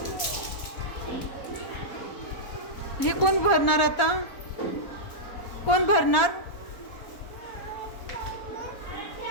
हे कोण भरणार आता? कोण भरणार?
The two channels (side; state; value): right; late; 4.1 ms